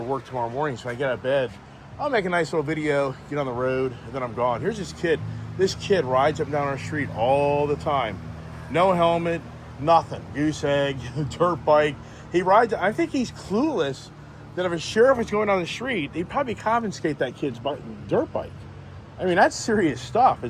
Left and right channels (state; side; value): identical; both; correlation 1.00